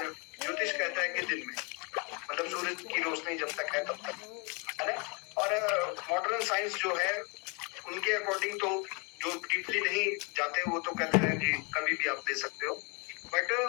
ज्योतिष कहता है कि दिन में, मतलब सूरज की रोशनी जब तक है तब तक, है ना। और मॉडर्न साइंस जो है उनके अकॉर्डिंग तो जो डीपली नहीं जाते वो तो कहते हैं कि कभी भी आप ले सकते हो। बट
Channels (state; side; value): quieter; right; 32.3 dB